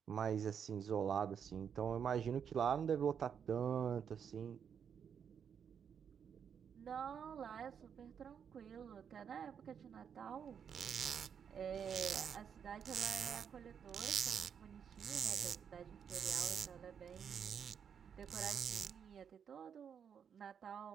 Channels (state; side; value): quieter; left; 7.6 dB